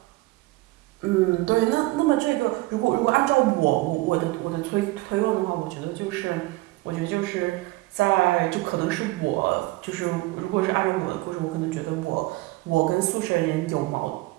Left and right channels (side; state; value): left; quieter; 20.4 dB